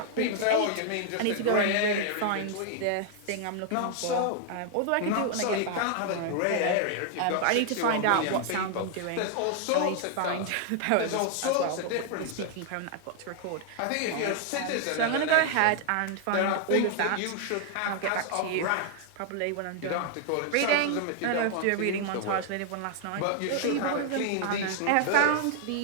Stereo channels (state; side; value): different; both; correlation 0.00